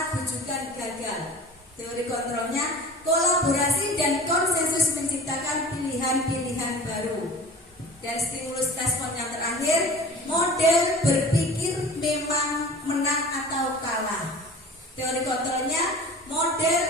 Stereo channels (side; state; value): both; normal; correlation 0.41